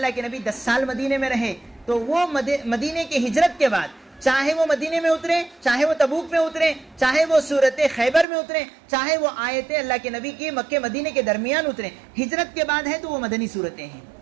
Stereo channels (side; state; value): left; drops out; at 8.2 s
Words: کے نبی 10 سال مدینے میں رہے، تو وہ مدینے کی ہجرت کے بعد چاہے وہ مدینے میں اترے، چاہے وہ تبوک میں اترے، چاہے وہ سورت خیبر میں اترے، چاہے وہ آیتیں اللہ کے نبی کی مکے مدینے کے درمیان اترے، ہجرت کے بعد ہے تو وہ مدنی صورتیں ہیں۔